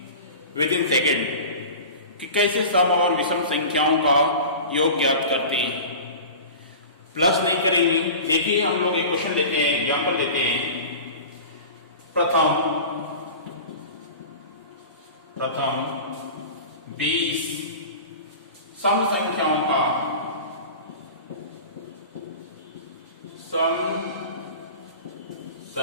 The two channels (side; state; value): both; inverted; correlation -0.35